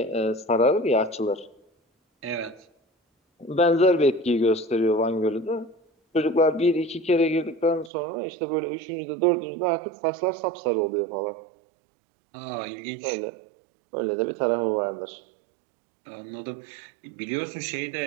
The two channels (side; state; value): left; drops out; at 7.9 s